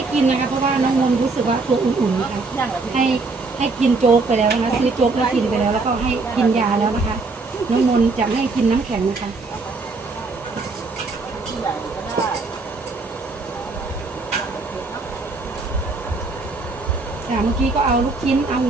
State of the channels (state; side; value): quieter; left; 3.8 dB